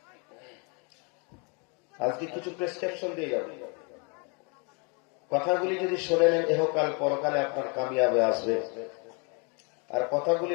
আজকে কিছু প্রেসক্রিপশন দিয়ে যাবে, কথাগুলি যদি শুনে নেন এহকাল পরকালে আপনার কামিয়াবে আসবে, আর কথাগুলি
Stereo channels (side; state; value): right; quieter; 34.3 dB